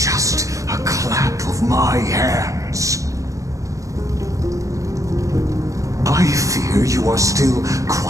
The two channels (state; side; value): late; left; 0.16 ms